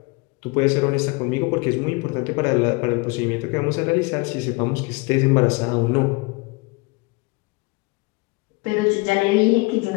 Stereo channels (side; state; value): right; quieter; 27.3 dB